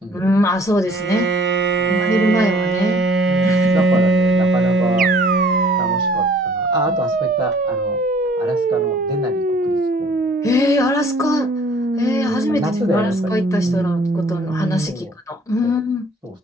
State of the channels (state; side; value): normal; both; correlation 0.55